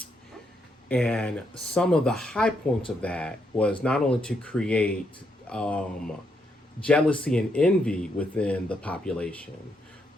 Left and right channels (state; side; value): normal; both; correlation 0.78